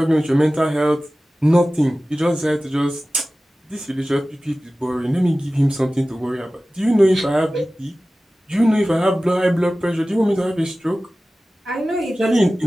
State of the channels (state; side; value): normal; both; correlation 0.96